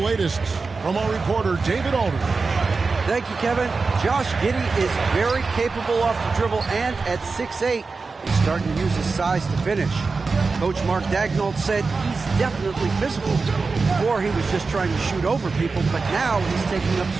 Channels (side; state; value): left; quieter; 4.3 dB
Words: from our reporter, David Alder. Thank you, Kevin. Josh Giddey is very capable off the dribble, and at 6'8", he's starting to use his size to finish. Coach Mark Daigneault said he's definitely physical. Before, he was just trying to shoot over people, but now he's taking up